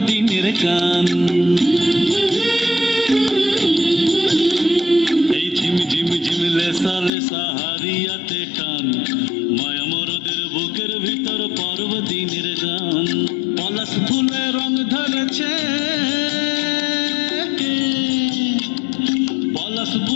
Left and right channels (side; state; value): right; drops out; at 7.1 s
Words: দিনের গান। এই ঝিমি ঝিমি ঝিম লেসা লেসা হাড়িয়াতে টান, মায়া মরদের বুকের ভিতর পরব দিনের গান। পলাশ ফুলে রং ধরেছে, পলাশ